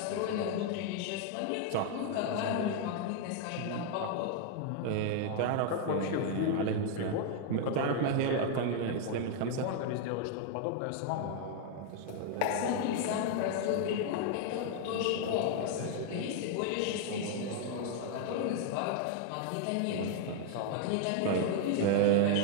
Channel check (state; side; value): different; both; correlation 0.00